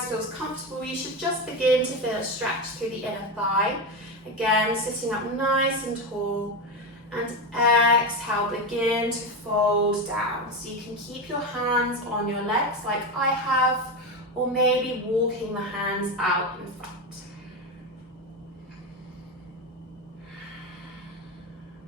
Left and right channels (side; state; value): both; normal; correlation 0.16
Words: feels comfortable. You should just begin to feel a stretch through the inner thigh. Again, sitting up nice and tall. And exhale, begin to fold down. So you can keep your hands on your legs like I have, or maybe walking the hands out in front.